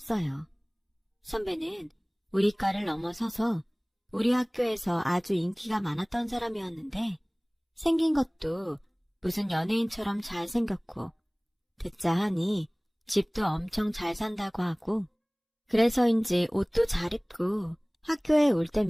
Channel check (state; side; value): identical; both; correlation 1.00